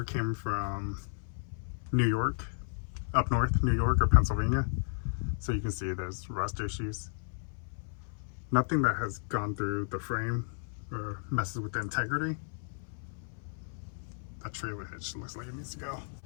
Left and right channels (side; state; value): right; silent; 56 dB below the other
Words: came from New York, up north, New York or Pennsylvania. So you can see there's rust issues. Nothing that has gone through the frame or messes with the integrity. That trailer hitch looks like it needs to go.